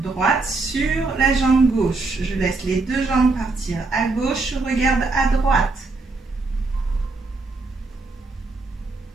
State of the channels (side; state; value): left; quieter; 3.6 dB